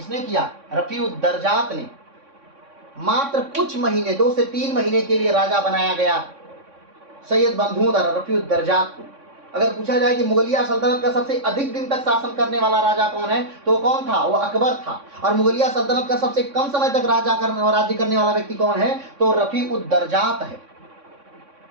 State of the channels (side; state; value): left; late; 3.6 ms